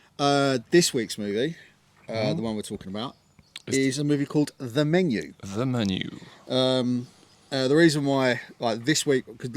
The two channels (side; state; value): both; identical; correlation 1.00